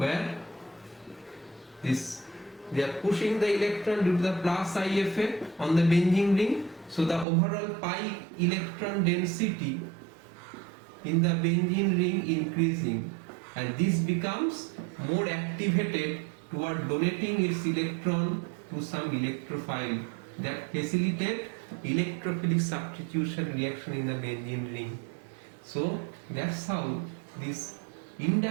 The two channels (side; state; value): left; drops out; at 7.2 s